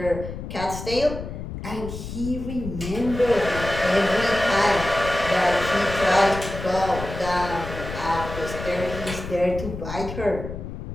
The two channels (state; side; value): noise; left; rumble, 8 dB below the sound